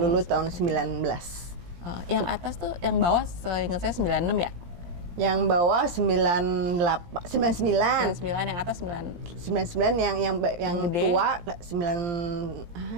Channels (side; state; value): left; late; 17 ms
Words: tahun 19. Yang atas tuh, yang bawah seingat saya 96 ya? Yang bawah 99. 99, yang atas 99 yang gede. tua 96.